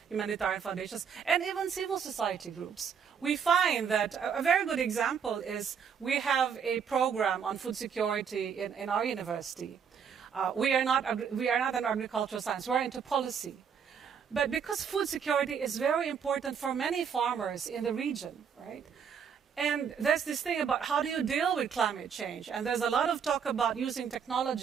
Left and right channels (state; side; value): quieter; left; 7.1 dB